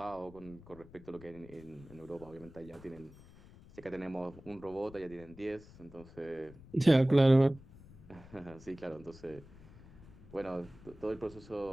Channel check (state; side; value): noise; left; rumble, 20 dB below the sound